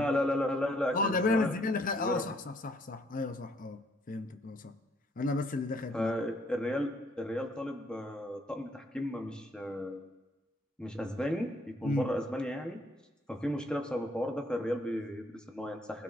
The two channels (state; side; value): normal; both; correlation 0.67